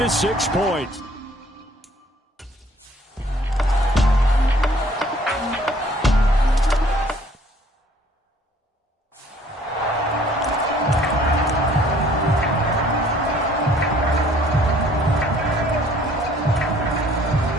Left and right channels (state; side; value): normal; both; correlation 0.58